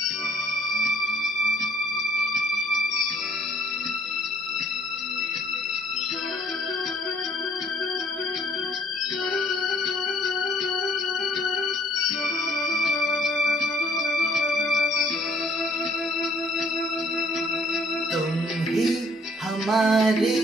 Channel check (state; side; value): normal; both; correlation 0.62